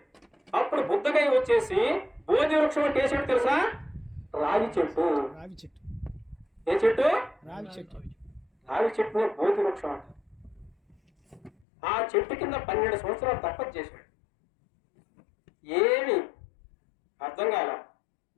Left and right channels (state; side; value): drops out; right; at 11.7 s